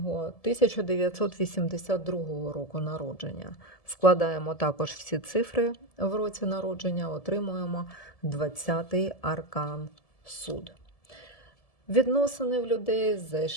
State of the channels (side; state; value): right; late; 1.7 ms